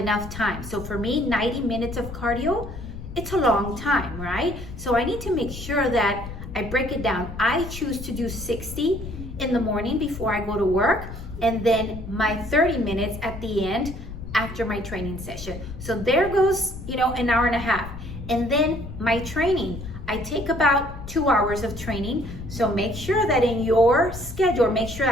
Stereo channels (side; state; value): left; noise; rumble, 11 dB below the sound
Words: time. So for me, 90 minutes of cardio, it's a long time, right? So I need to make sure that I break it down. I choose to do 60 in the morning before I go to work, and then my 30 minutes at the end after my training session. So there goes, an hour and a half. And then my training, I take about 2 hours of training. So make sure that in your schedule,